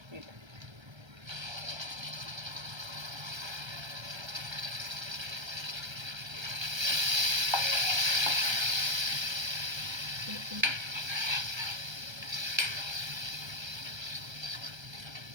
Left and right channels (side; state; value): left; late; 1.3 ms